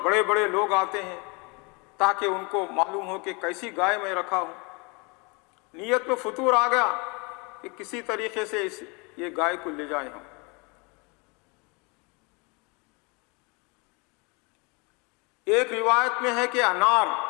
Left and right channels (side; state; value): right; quieter; 30.1 dB